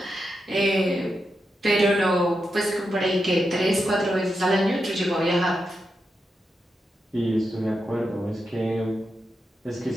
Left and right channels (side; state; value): both; normal; correlation 0.87